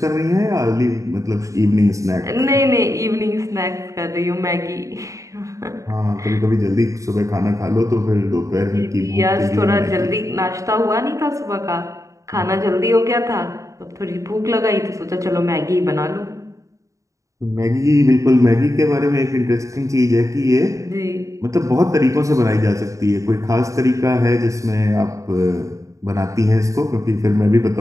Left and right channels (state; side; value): late; left; 0.15 ms